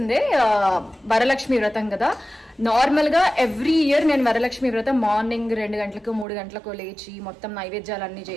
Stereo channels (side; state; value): left; drops out; at 6.2 s